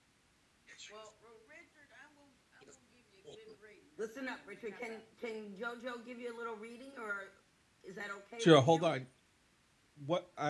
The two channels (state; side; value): identical; both; correlation 1.00